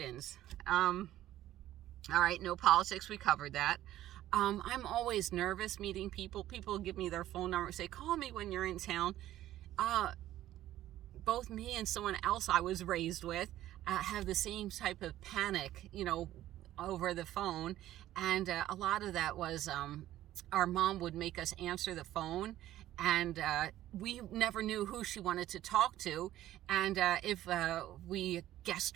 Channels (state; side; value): quieter; left; 13.7 dB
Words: All right, no politics, we covered that. I'm always nervous meeting people. People give me their phone number, say, call me when you're in town. Both me and someone else I was raised with have the same type of panic, over the phone. And a lot of that was our mom would make us answer the phone, and we never knew who she wanted to talk to. And if we